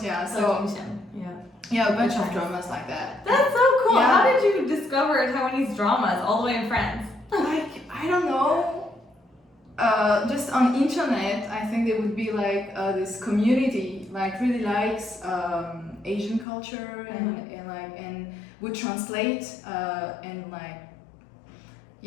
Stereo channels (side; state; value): right; drops out; at 16.4 s